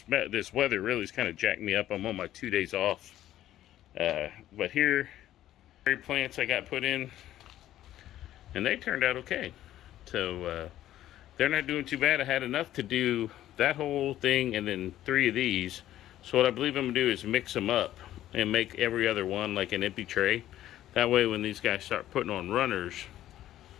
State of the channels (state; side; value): quieter; right; 13.1 dB